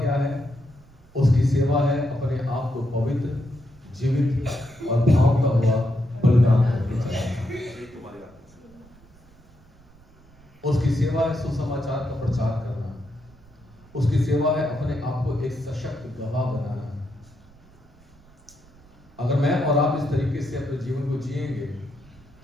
क्या है? उसकी सेवा है अपने आप को पवित्र, जीवित और भाव का हुआ बलिदान करके चलाना। उसकी सेवा है सुसमाचार का प्रचार करना। उसकी सेवा है अपने आप को एक सशक्त गवाह बनाना। अगर मैं और आप इस तरीके से अपने जीवन को जिएंगे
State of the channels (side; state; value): right; noise; rumble, 27 dB below the sound